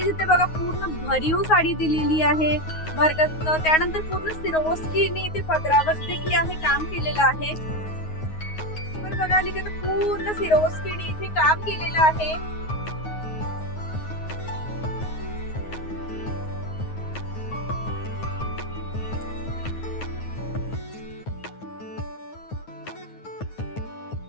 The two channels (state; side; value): late; right; 9.5 ms